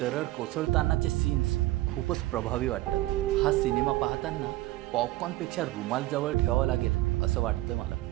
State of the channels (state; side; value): quieter; left; 17.8 dB